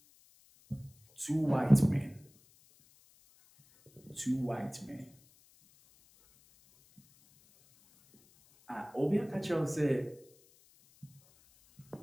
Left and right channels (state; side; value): noise; left; hiss, 29 dB below the sound